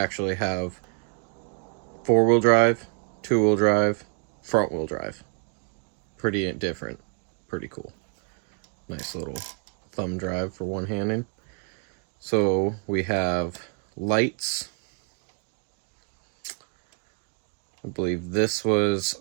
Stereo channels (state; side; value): quieter; left; 39.6 dB